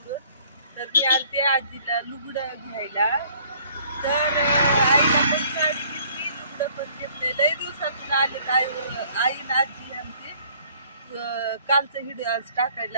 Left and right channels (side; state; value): both; inverted; correlation -0.59